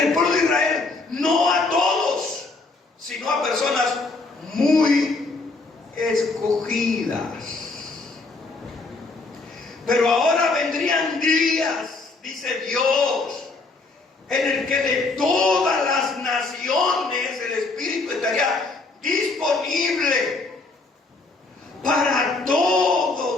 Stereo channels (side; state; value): right; quieter; 3.6 dB